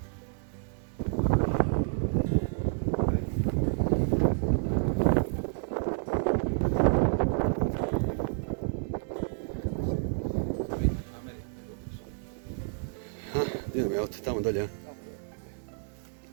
Idemo, jel te tamo dolje?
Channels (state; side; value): silent; left; digital silence